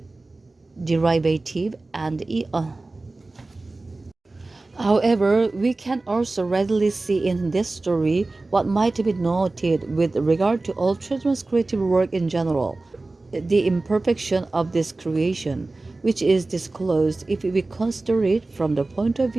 derivative, and However, we can also readily see in this story what might be noted with regard to all children's creative work in general, the imperfection of this creation, which is disclosed if we consider it from the point of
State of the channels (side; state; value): left; quieter; 3.2 dB